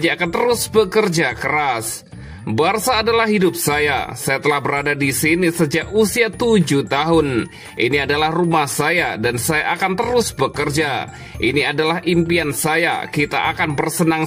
akan terus bekerja keras. Barca adalah hidup saya telah berada di sini sejak usia 7 tahun. Ini adalah rumah saya dan saya akan terus bekerja. Ini adalah impian saya, kita akan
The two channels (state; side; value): identical; both; correlation 1.00